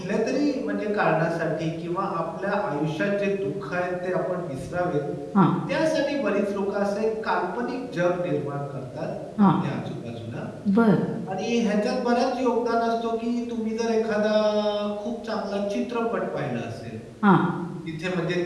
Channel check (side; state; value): both; identical; correlation 1.00